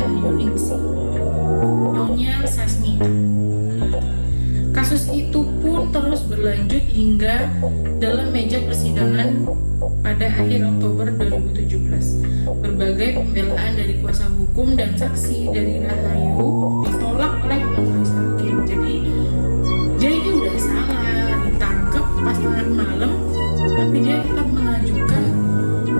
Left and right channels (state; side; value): inverted; both; correlation -1.00